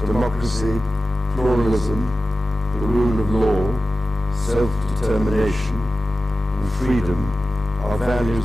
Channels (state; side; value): normal; both; correlation 0.94